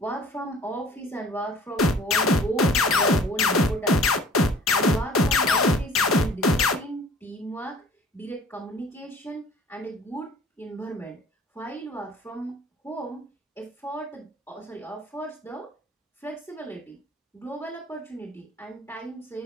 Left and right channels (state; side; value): normal; both; correlation 0.50